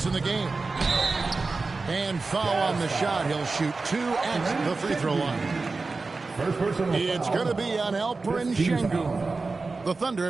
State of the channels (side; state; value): left; quieter; 3.9 dB